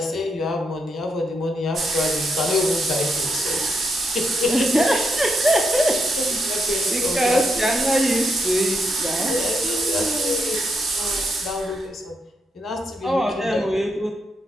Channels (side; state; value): both; normal; correlation 0.80